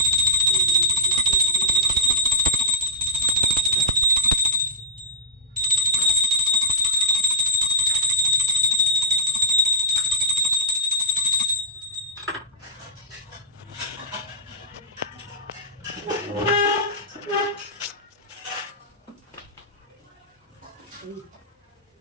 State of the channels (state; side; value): normal; both; correlation -0.13